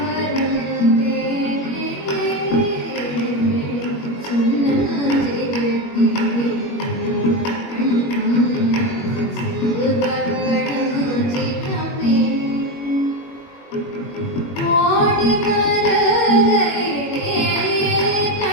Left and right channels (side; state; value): right; late; 21 ms